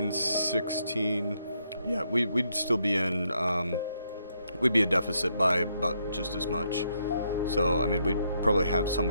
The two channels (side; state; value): both; inverted; correlation -0.76